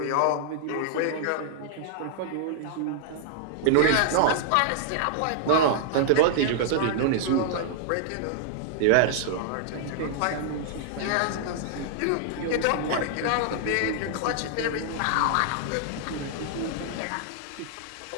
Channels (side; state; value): both; different; correlation -0.01